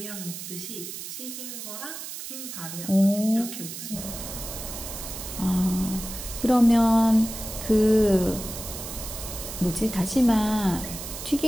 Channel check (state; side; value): noise; right; hiss, 9 dB below the sound